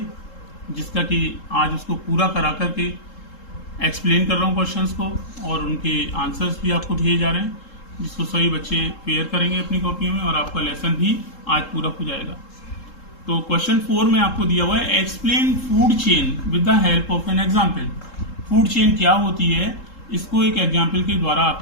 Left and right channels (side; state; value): right; late; 3.7 ms